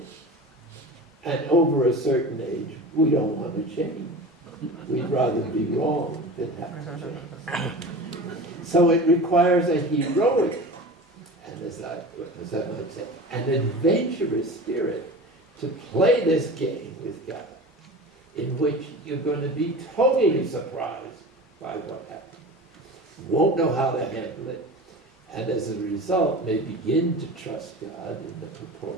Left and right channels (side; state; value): both; normal; correlation 0.34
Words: And over a certain age, we don't want to change. We'd rather be wrong than have to change. So it requires a heroic, and as I might say, an adventurous spirit to play this game with God, in which you're going to be totally surprised by what happens. You won't know how to handle it, and as a result may begin to trust God in the